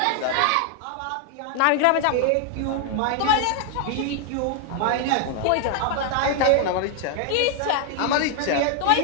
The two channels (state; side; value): different; both; correlation 0.00